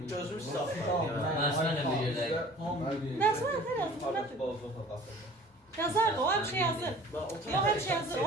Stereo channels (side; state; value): both; normal; correlation 0.47